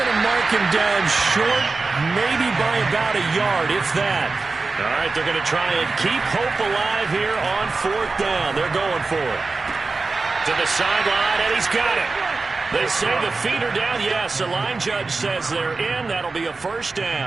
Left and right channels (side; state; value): left; quieter; 3.9 dB